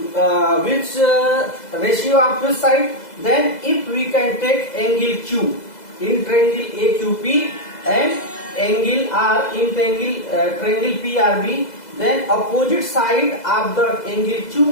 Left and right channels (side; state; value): right; late; 2.0 ms